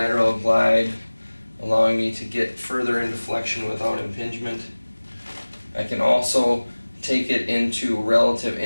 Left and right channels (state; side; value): inverted; both; correlation -1.00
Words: glide allowing me to get further into flexion without impingement. I can also take it into relative